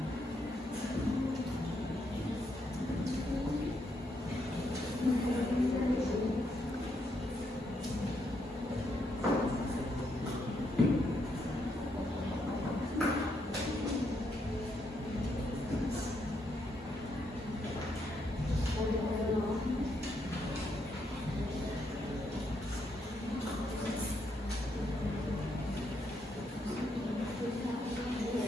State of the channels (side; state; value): both; normal; correlation 0.77